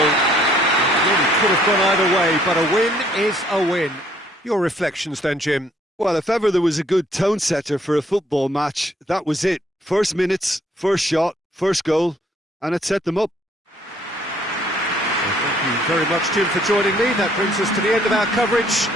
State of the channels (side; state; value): both; normal; correlation 0.64